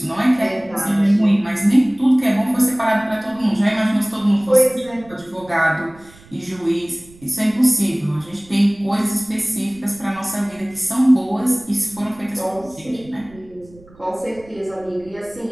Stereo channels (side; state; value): right; noise; rumble, 24 dB below the sound